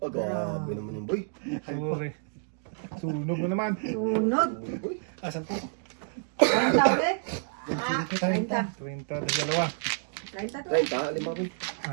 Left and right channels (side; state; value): left; silent; digital silence